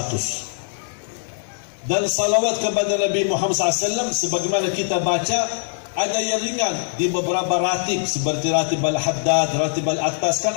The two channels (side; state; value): right; silent; digital silence